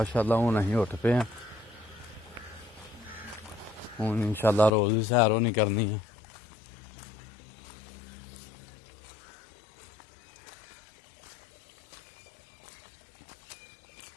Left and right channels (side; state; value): right; drops out; at 4.7 s